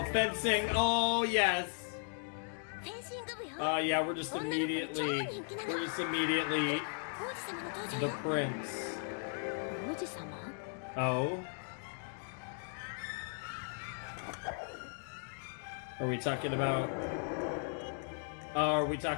fencing, oh yes! Oh yeah, we're just immediately the prince. Oh? Are we talking about...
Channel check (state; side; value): silent; right; 53 dB below the other